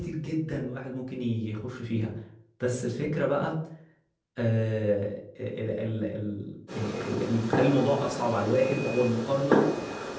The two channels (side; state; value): both; identical; correlation 1.00